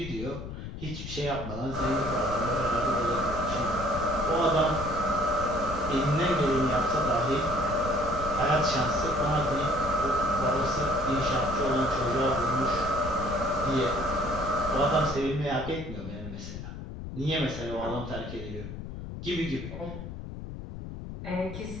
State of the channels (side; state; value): left; noise; rumble, 9 dB below the sound